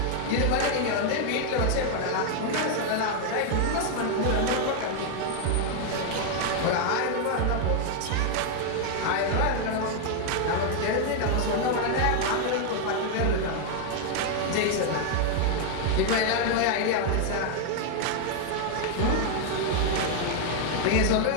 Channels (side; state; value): both; different; correlation 0.00